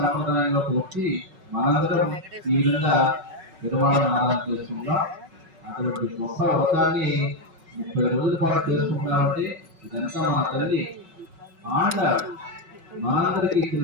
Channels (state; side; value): late; left; 5.4 ms